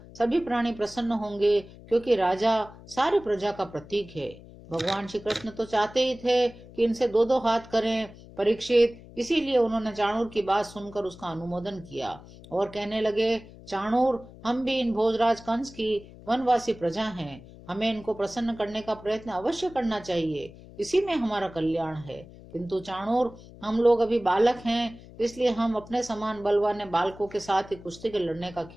सभी प्राणी प्रसन्न होंगे, क्योंकि राजा सारी प्रजा का प्रतीक है। भगवान श्री कृष्ण तो चाहते ही थे कि इनसे 2-2 हाथ करें परीक्षित, इसीलिए उन्होंने चाणूर की बात सुनकर उसका अनुमोदन किया और कहने लगे, चाणूर, हम भी इन भोजराज कंस की वनवासी प्रजा हैं। हमें इनको प्रसन्न करने का प्रयत्न अवश्य करना चाहिए, इसी में हमारा कल्याण है। किंतु चाणूर, हम लोग अभी बालक हैं, इसलिए हम अपने समान बलवान बालकों के साथ ही कुश्ती के लड़ने का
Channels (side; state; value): left; noise; hum, 19 dB below the sound